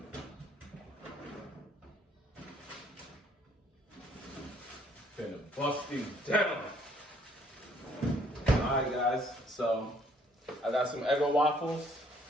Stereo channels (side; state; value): both; normal; correlation 0.63